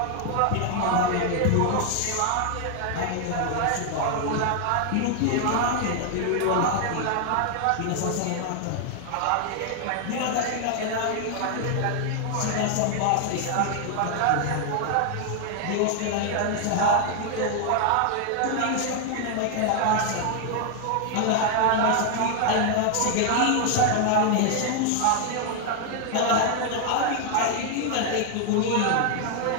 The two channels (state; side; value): different; both; correlation 0.00